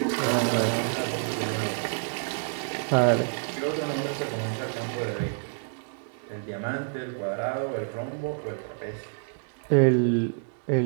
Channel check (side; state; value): left; silent; digital silence